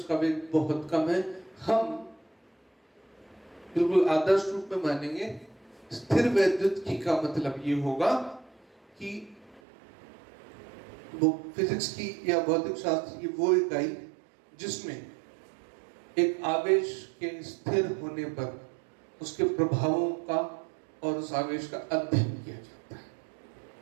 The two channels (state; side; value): drops out; left; at 9.6 s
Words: वेग बहुत कम है। हम बिल्कुल आदर्श रूप में मानेंगे स्थिर वैद्युतिकी का मतलब ये होगा कि वो फिजिक्स की या भौतिक शास्त्र की वो इकाई जिसमें एक आवेश के स्थिर होने पर उसके प्रभावों का और उस आवेश का अध्ययन किया जाता है।